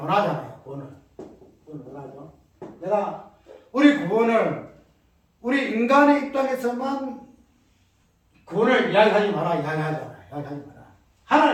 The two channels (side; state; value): both; identical; correlation 1.00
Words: 구원을 논하죠. 내가 우리 구원을 우리 인간의 입장에서만 구원을 이야기하지 마라.